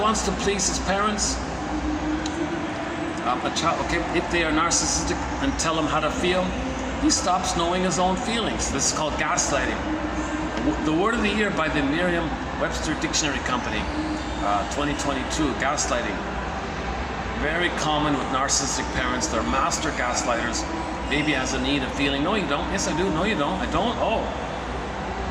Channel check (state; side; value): identical; both; correlation 1.00